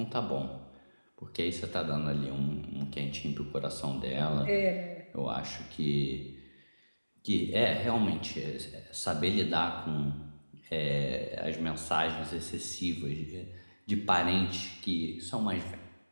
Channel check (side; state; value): both; inverted; correlation -1.00